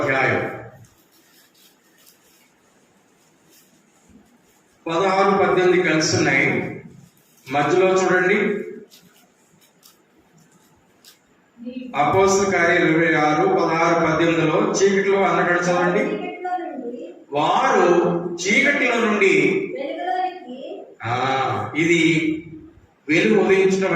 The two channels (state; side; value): identical; both; correlation 1.00